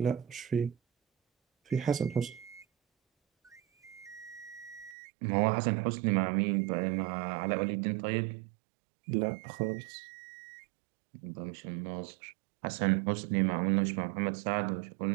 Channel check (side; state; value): left; drops out; at 5.0 s